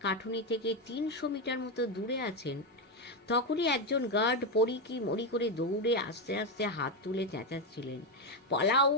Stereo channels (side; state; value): both; normal; correlation 0.08